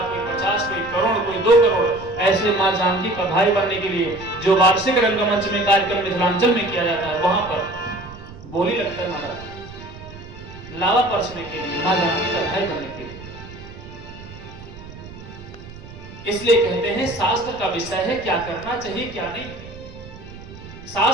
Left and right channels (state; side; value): noise; right; rumble, 16 dB below the sound